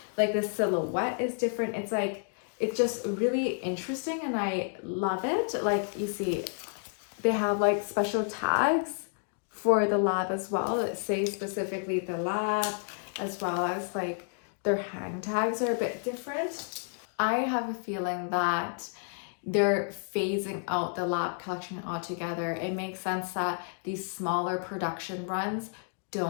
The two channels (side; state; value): right; silent; 57 dB below the other